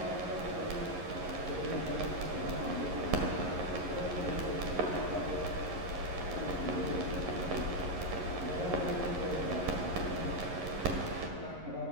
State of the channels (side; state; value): left; late; 11 ms